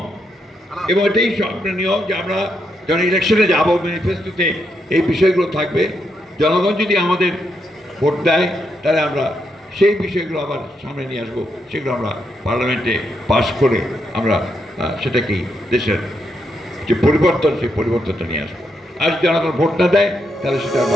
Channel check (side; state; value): both; normal; correlation 0.80